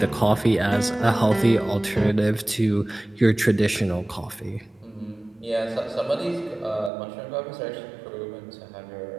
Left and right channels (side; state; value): left; drops out; at 6.9 s